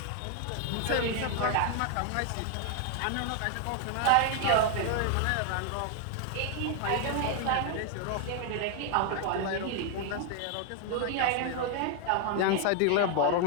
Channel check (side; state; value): both; different; correlation 0.00